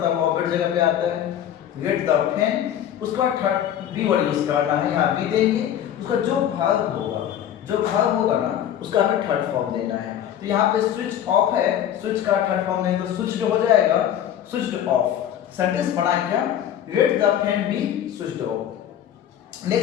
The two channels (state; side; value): quieter; right; 10.4 dB